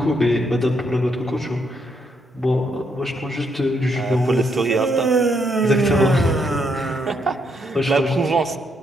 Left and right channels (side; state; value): both; normal; correlation 0.75